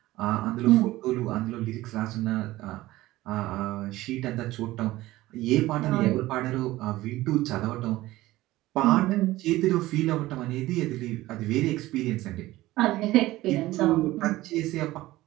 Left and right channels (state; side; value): quieter; left; 17.2 dB